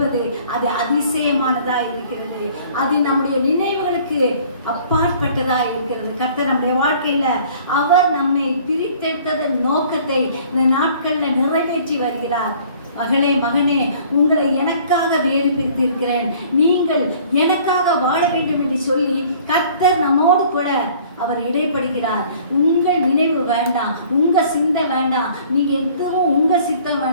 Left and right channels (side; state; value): both; inverted; correlation -0.53